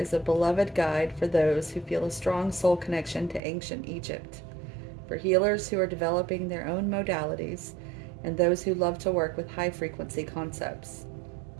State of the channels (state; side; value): drops out; left; at 3.4 s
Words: is a beloved guide for those who feel a strong soul connection to ancient Egypt, for healers who are developing their own modalities, and those who love to work with high-frequency concepts.